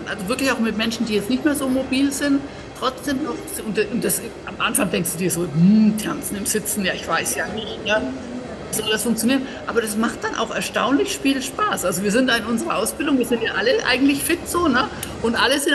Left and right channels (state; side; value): identical; both; correlation 1.00